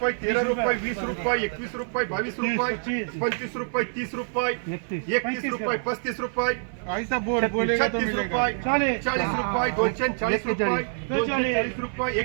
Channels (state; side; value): silent; left; 59 dB below the other